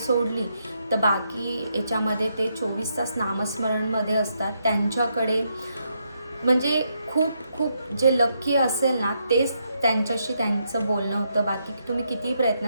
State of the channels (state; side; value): inverted; both; correlation -0.79